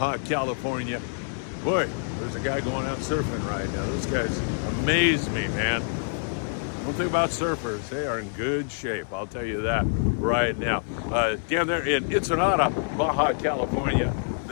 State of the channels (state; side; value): silent; right; digital silence